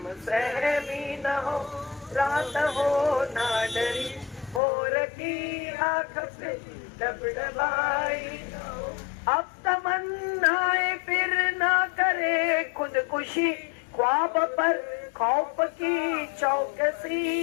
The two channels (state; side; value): drops out; right; at 4.6 s